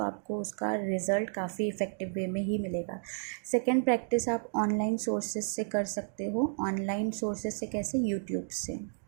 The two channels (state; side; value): silent; left; digital silence